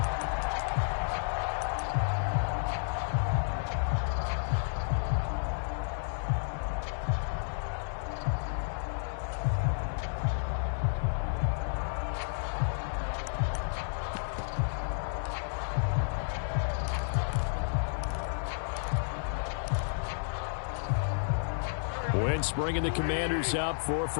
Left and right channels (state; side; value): silent; right; 57 dB below the other